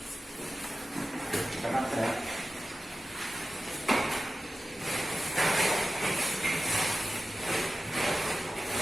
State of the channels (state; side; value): normal; both; correlation 0.94